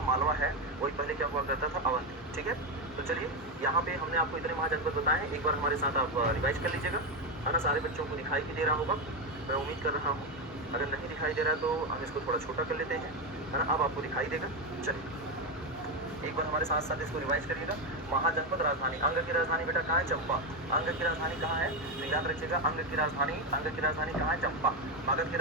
है वही पहले क्या हुआ करता था? अवंती, ठीक है। तो चलिए यहाँ पे हमने आपको इतने महाजनपद बताए हैं, एक बार हमारे साथ आप रिवाइज कर लीजिएगा, है ना। सारे बच्चों को दिखाई भी दे रहा होगा, मैं उम्मीद कर रहा हूँ। अगर नहीं दिखाई दे रहा है तो हम इसको थोड़ा छोटा कर लेते हैं, है ना। अब आपको दिखाई देगा। चलिए एक बार हमारे साथ साथ इसको रिवाइज करिएगा। महाजनपद राजधानी, अंग की राजधानी बेटा कहाँ है? चंपा। अंग की राजधानी कहाँ है? तो याद रखिएगा अंग की राजधानी, अंग की राजधानी कहाँ है? चंपा। मगध की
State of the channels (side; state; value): both; normal; correlation 0.09